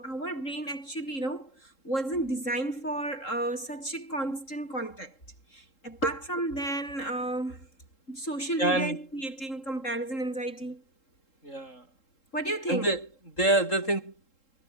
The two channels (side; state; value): right; late; 3.7 ms